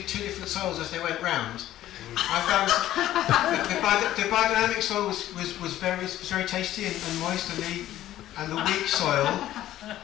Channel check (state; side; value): quieter; right; 13.5 dB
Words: different soils as they went round. I found the biodynamic soil was very tasty and moist, and the weak soil